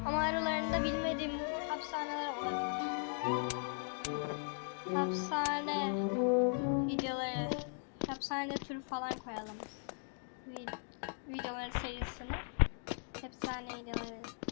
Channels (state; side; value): silent; right; 52 dB below the other